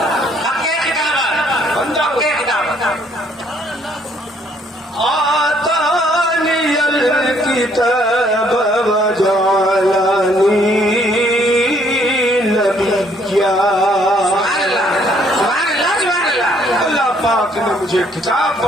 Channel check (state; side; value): normal; both; correlation 0.65